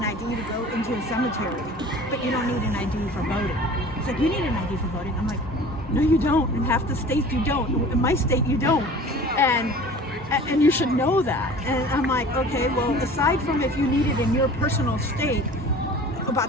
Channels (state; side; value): normal; both; correlation 0.43